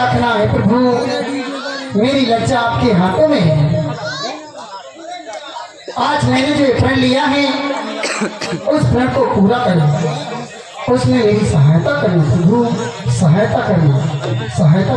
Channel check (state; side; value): identical; both; correlation 1.00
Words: है प्रभु। मेरी लज्जा आपके हाथों में है। आज मैंने जो प्रण लिया है उस प्रण को पूरा करना, उसमें मेरी सहायता करना प्रभु, सहायता करना, सहायता